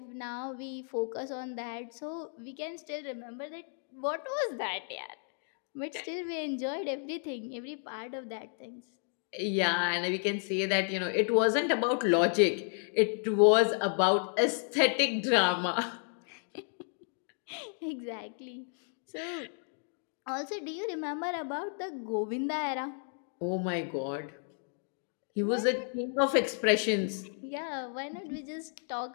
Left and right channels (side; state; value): right; silent; 56 dB below the other